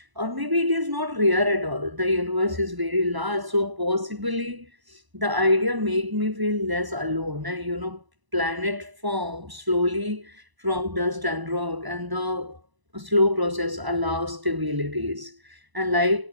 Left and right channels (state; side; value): late; left; 1.0 ms